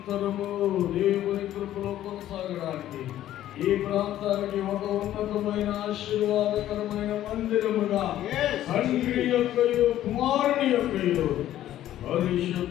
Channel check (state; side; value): quieter; right; 12.8 dB